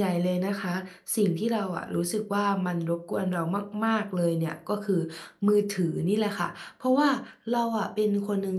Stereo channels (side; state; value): both; identical; correlation 1.00